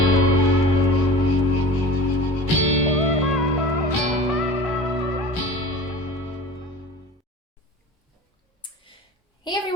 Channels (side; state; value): both; normal; correlation 0.37